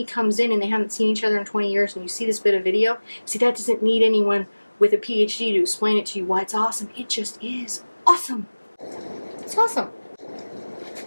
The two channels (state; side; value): inverted; both; correlation -1.00